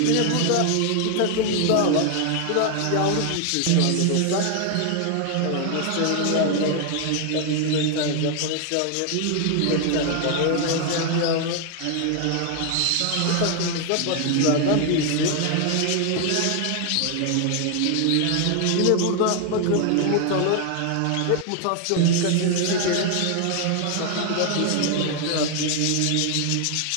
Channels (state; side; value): different; both; correlation 0.00